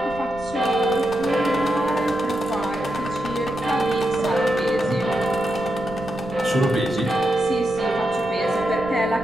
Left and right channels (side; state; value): right; noise; rumble, 17 dB below the sound